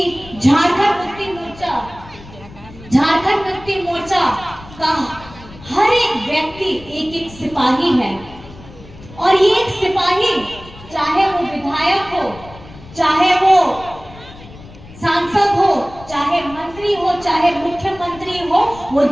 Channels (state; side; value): noise; left; rumble, 19 dB below the sound